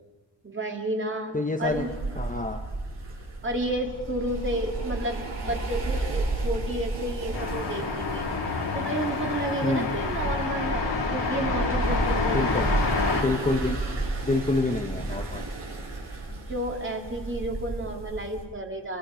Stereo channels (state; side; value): normal; both; correlation 0.43